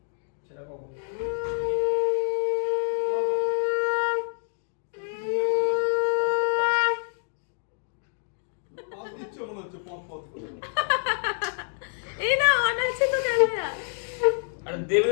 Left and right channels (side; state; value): right; silent; 57 dB below the other